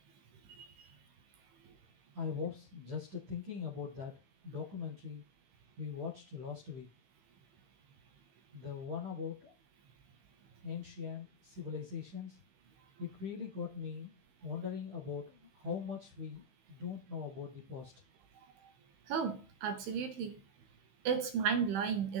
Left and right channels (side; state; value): left; late; 15 ms